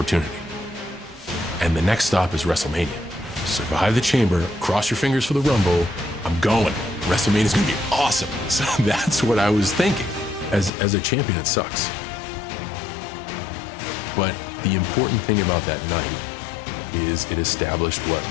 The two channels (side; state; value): right; drops out; at 10.7 s